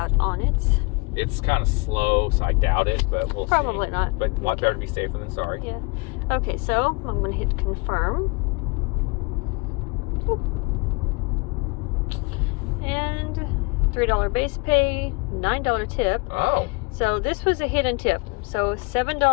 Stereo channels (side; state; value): right; quieter; 28.2 dB